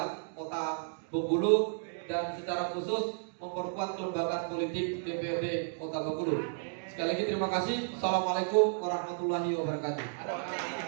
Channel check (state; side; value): silent; left; digital silence